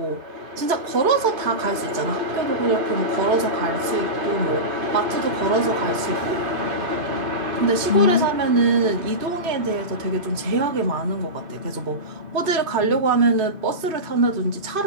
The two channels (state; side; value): late; left; 2.5 ms